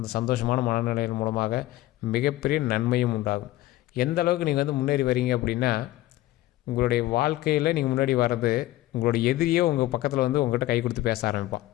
சந்தோஷமான மனநிலையின் மூலமாக மிகப்பெரிய நன்மையும் உண்டாகும். எந்த அளவுக்கு நீங்கள் வந்து முன்னேறி வரீங்க அப்படின்னா, உங்களுடைய வாழ்க்கையில் நீங்கள் முன்னாடி வர்றது உங்களுடைய எதிரியே உங்கள் பக்கத்தில் வந்து உங்கள்கிட்ட கை கொடுத்து பேச ஆரம்பிப்பான்.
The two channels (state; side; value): quieter; right; 16.2 dB